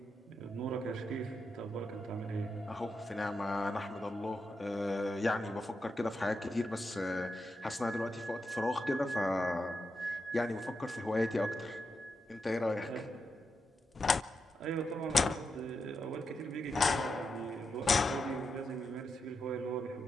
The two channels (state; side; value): normal; both; correlation 0.86